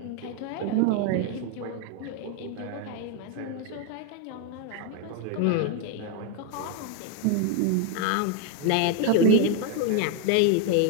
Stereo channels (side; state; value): both; different; correlation 0.01